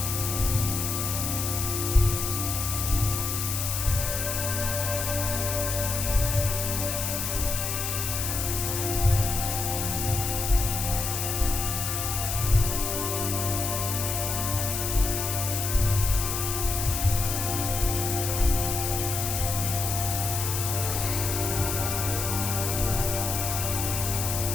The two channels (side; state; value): left; noise; hiss, 2 dB below the sound